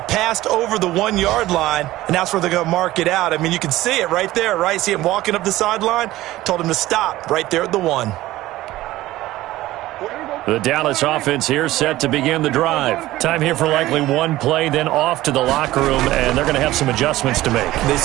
passed over the 1-yard line, and that's where they're going to mark it out. I mean, you can see it right there, right? See him walking up the sideline? Told him to stop right there at the 1. The Dallas offense here set to begin the drive. Time here for likely one play, then off to the locker room, and they're going to have some adjustments to make. They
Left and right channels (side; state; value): left; quieter; 16.4 dB